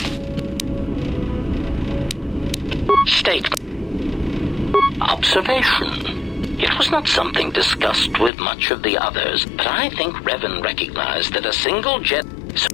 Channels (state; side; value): drops out; right; at 8.3 s